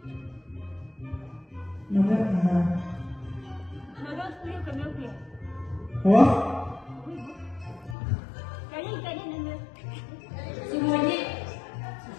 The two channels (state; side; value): drops out; right; at 8.0 s